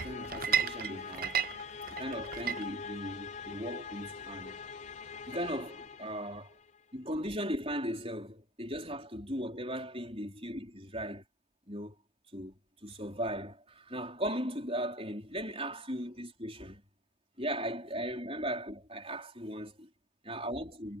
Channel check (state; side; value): normal; both; correlation 0.40